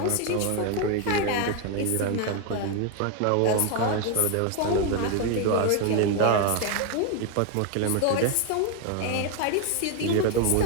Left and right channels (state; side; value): different; both; correlation 0.01